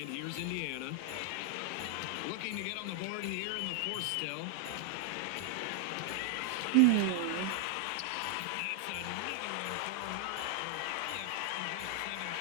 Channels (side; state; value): both; different; correlation 0.00